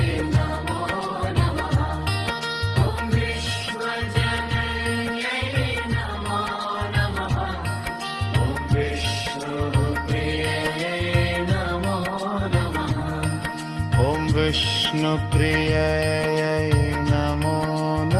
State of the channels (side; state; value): both; identical; correlation 1.00